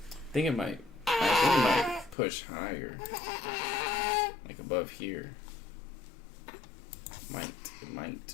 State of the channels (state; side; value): drops out; right; at 2.1 s